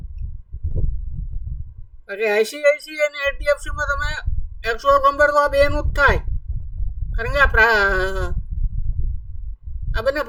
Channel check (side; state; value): both; identical; correlation 1.00